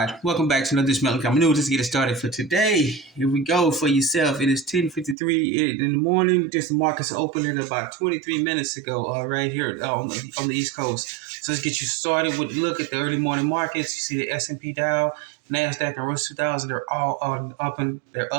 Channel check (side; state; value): left; drops out; at 5.2 s